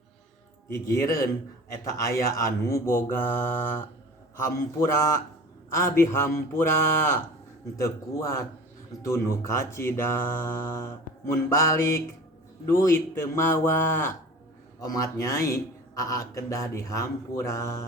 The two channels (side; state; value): both; normal; correlation 0.40